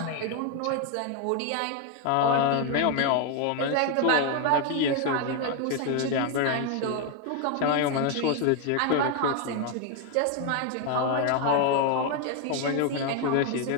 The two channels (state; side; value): different; both; correlation 0.01